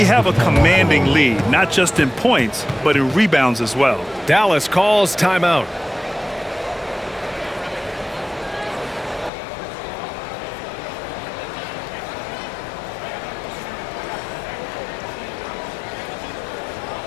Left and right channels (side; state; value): right; drops out; at 9.3 s